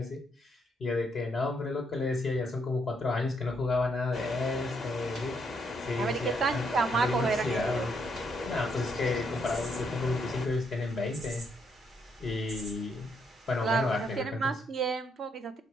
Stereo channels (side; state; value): both; normal; correlation 0.75